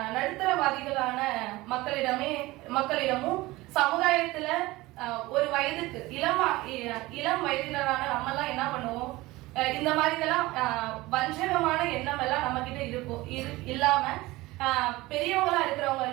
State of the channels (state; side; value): quieter; left; 19.8 dB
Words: நடுத்தரவாதிகளான மக்களிடமும் சமுதாயத்துல ஒரு வயதுக்கு இளம் வயதினரான நம்ம எல்லாம் என்ன பண்ணுவோம், இந்த மாதிரி இதெல்லாம் வஞ்சகமான எண்ணம் எல்லாம் நம்ம கிட்ட இருக்கும். இல்லாம பெரியவங்களா